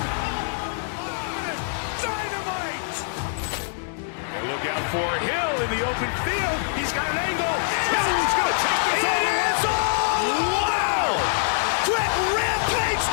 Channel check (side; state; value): right; silent; digital silence